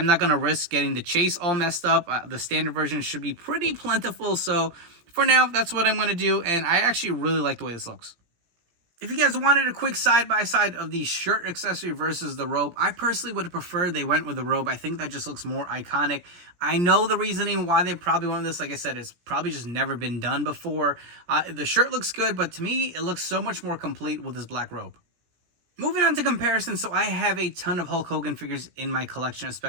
not going to risk getting the chase all messed up. The standard version should be pretty plentiful, so for now, that's what I'm going to do, and I actually really like the way this looks. If you guys wanted a quick side-by-side of the shirt accessory versus the robe, I personally would have preferred they went with the robe. I think that just looks more iconic. I know the reasoning why they probably went with this. Like I said, it's probably just never been done before. The shirt looks good, but to me, it looks so much more complete with this black robe. Moving on to comparison, so I have a ton of Hulk Hogan figures in my collection,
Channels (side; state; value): left; late; 17 ms